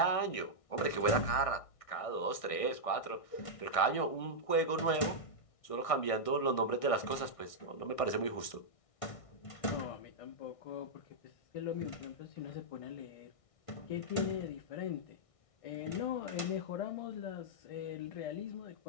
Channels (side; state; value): right; late; 1.6 ms